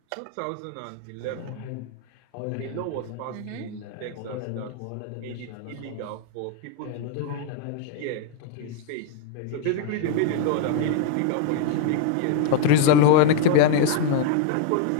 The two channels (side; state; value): both; different; correlation 0.00